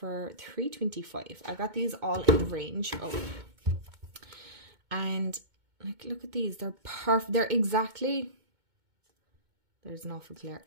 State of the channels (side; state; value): left; late; 2.2 ms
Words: $3.25. I got these all in the range. Oh. And, like, look at these. They're perfect. They're exactly, there's an awful glare.